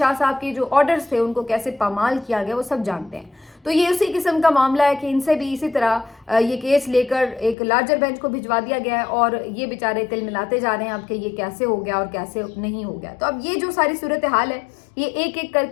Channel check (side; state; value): right; drops out; at 7.6 s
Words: صاحب کے جو آرڈرز تھے ان کو کیسے پامال کیا گیا وہ سب جانتے ہیں. تو یہ اسی قسم کا معاملہ ہے کہ ان سے بھی اسی طرح یہ کیس لے کر ایک لارجر بینچ کو بھجوا دیا گیا ہے اور یہ بیچارے تل ملاتے جا رہے ہیں اب کہ یہ کیسے ہو گیا اور کیسے نہیں ہو گیا. تو اب یہ جو ساری صورتحال ہے یہ ایک ایک کر